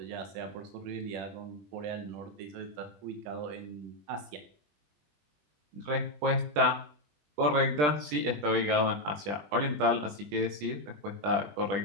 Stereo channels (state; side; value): late; left; 20 ms